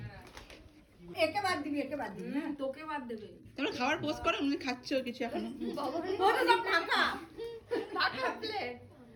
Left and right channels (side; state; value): both; identical; correlation 1.00